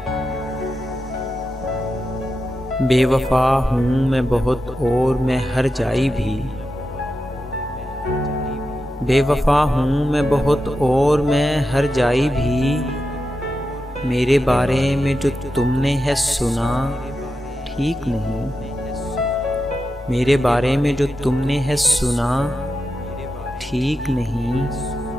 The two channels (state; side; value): normal; both; correlation 0.89